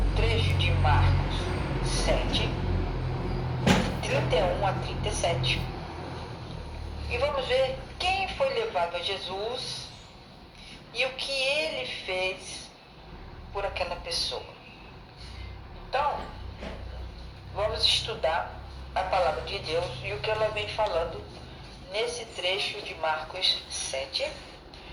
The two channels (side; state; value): both; identical; correlation 1.00